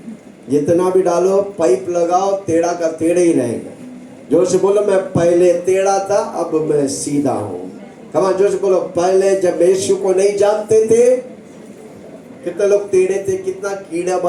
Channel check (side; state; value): both; identical; correlation 1.00